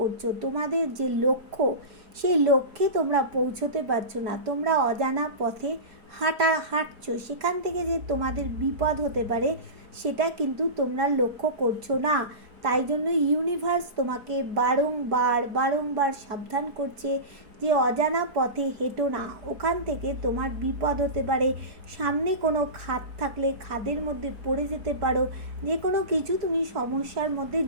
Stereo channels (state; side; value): late; left; 4.7 ms